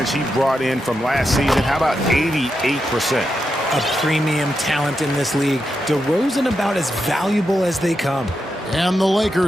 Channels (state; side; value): normal; both; correlation 0.86